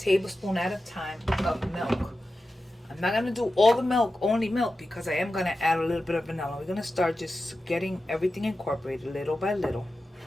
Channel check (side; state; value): both; normal; correlation 0.92